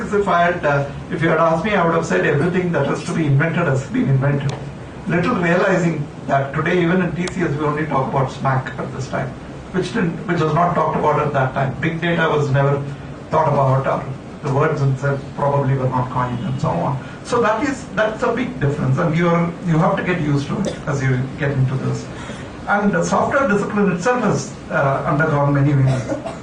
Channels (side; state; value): both; identical; correlation 1.00